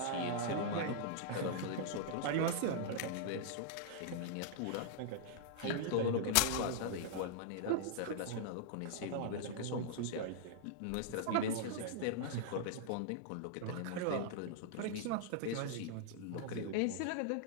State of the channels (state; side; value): different; both; correlation -0.01